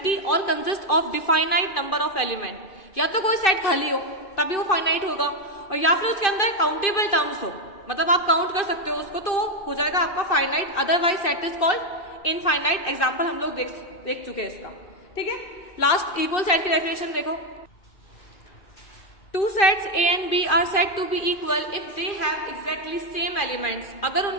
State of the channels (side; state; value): right; late; 2.5 ms